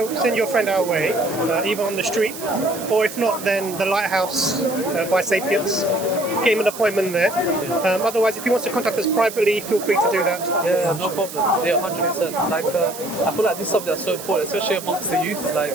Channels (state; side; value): noise; right; hiss, 12 dB below the sound